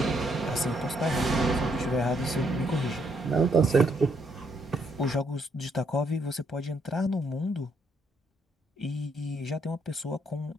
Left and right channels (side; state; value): both; normal; correlation 0.73